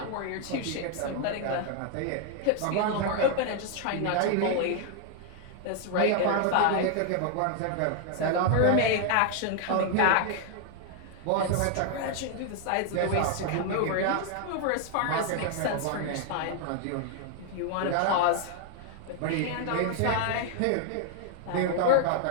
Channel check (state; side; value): different; both; correlation 0.00